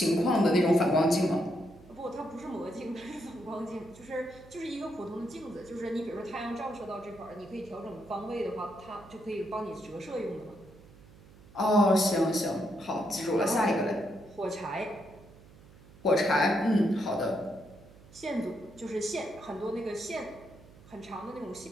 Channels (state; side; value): noise; right; hum, 22 dB below the sound